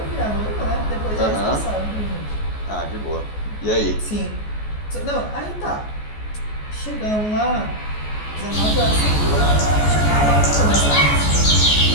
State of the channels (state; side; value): late; right; 14 ms